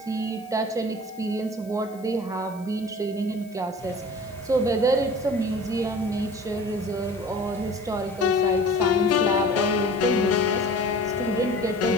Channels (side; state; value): left; noise; hiss, 26 dB below the sound